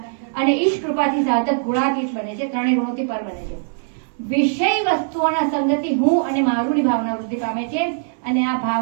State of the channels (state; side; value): silent; left; 60 dB below the other